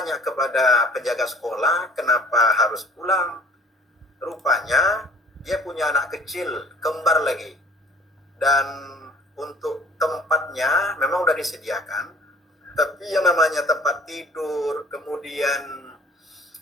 kepada penjaga sekolah kenapa harus pulang, rupanya dia punya anak kecil, kembar lagi. Dan untuk tempatnya memang udah disediakan, tapi yang namanya tempat tidur, kemudian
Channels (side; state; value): both; normal; correlation 0.51